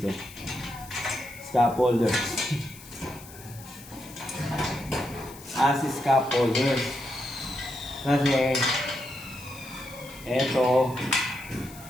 Scaffolders. As scaffolders. Kasi eto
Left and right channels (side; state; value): left; noise; hiss, 18 dB below the sound